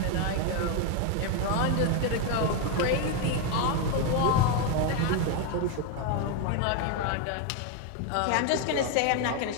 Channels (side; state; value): both; different; correlation 0.02